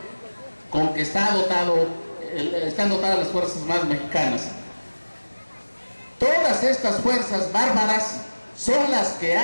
con que están dotadas las Fuerzas Armadas mexicanas. Todas estas fuerzas bárbaras son las que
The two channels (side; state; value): both; inverted; correlation -1.00